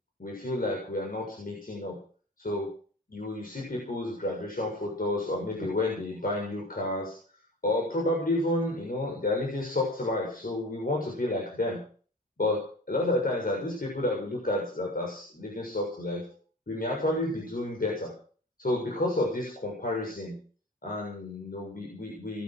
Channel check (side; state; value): both; normal; correlation 0.37